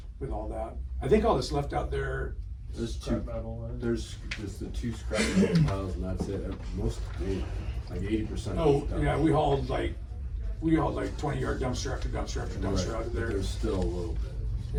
all that. I think all that's left out there, There's Scrap metal. there's just the 2 scrap metal piles and that's it. Most, like 80%. oh, yeah, we hauled like 20-yard dumpster after dumpster after dumpster out of But there. there's still a little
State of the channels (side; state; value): both; identical; correlation 1.00